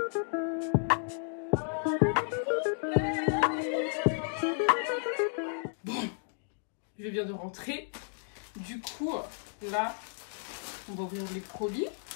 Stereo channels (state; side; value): silent; right; digital silence